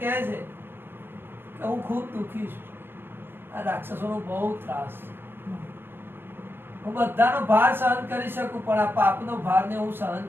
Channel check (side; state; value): left; late; 0.10 ms